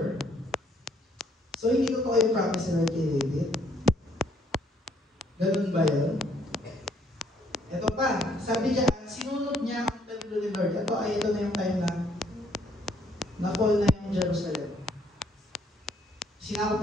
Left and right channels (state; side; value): normal; both; correlation 0.67